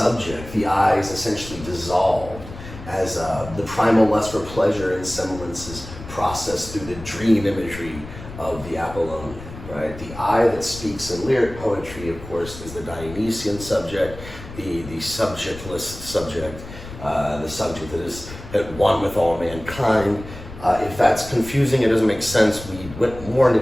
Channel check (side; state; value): left; noise; rumble, 14 dB below the sound